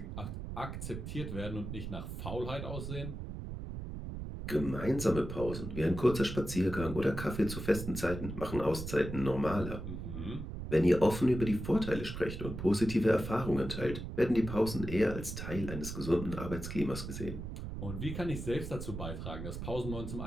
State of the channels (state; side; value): noise; right; rumble, 7 dB below the sound